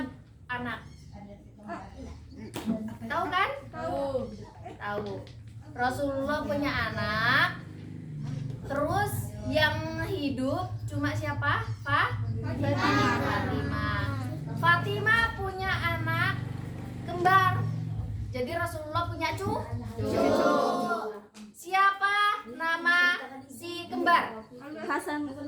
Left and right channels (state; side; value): identical; both; correlation 1.00